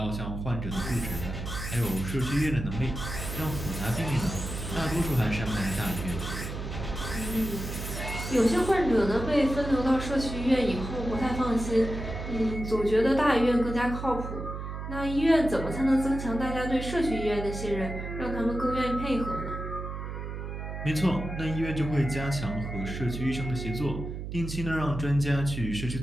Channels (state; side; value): noise; right; hum, 6 dB below the sound